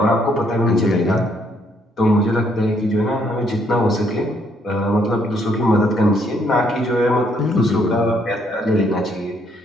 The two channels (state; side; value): normal; both; correlation 0.70